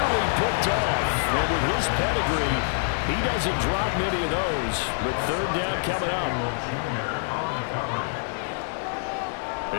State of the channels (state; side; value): silent; right; digital silence